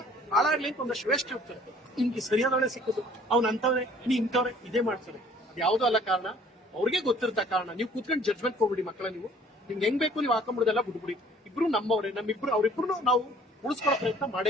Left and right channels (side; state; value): both; normal; correlation 0.55